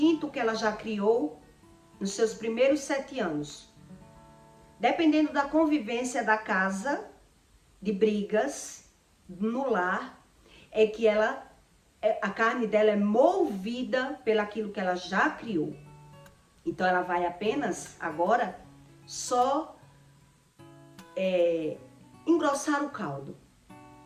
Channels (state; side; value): identical; both; correlation 1.00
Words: que ela já criou nos seus primeiros 7 anos. Dependendo da convivência da casa, de brigas, no lar, é que a carne dela é movida pelaquilo que ela já criou. Então ela vai apenas agora só engrossar o caldo.